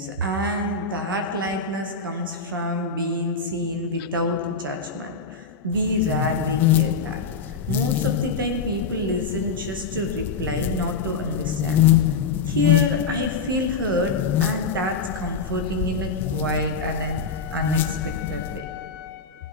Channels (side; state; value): right; quieter; 4.9 dB